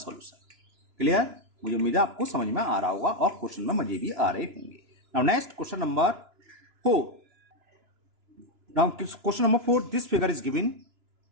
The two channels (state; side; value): late; left; 2.9 ms